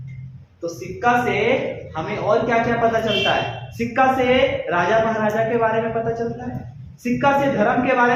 तो सिक्का से हमें और क्या क्या पता चलता है? सिक्का से राजा महाराजा के बारे में पता चलता है, सिक्का से धर्म के बारे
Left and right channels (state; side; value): identical; both; correlation 1.00